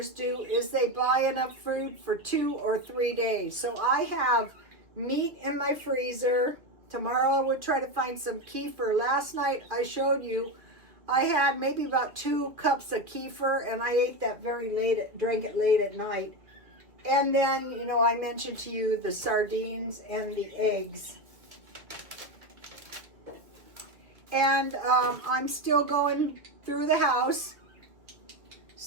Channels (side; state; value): left; late; 2.1 ms